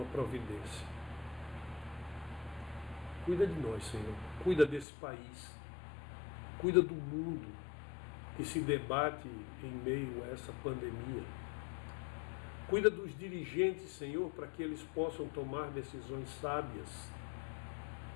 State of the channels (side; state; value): right; drops out; at 4.9 s